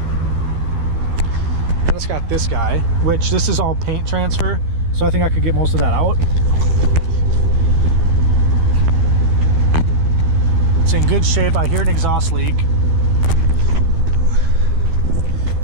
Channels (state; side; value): late; left; 12 ms